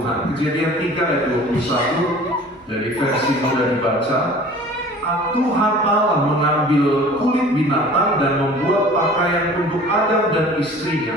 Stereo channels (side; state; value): both; normal; correlation 0.45